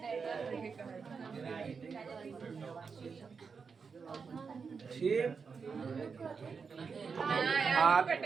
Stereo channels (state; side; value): quieter; left; 5.4 dB